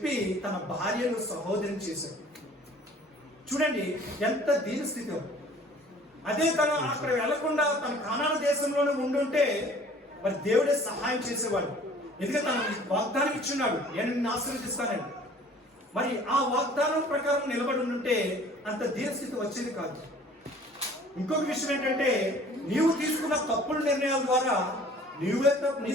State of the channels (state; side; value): normal; both; correlation 0.51